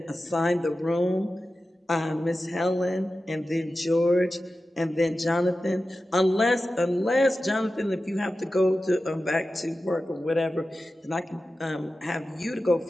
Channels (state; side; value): normal; both; correlation 0.94